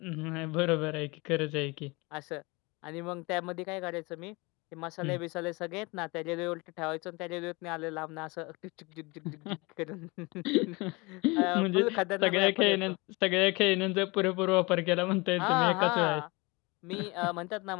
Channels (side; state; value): right; quieter; 25.9 dB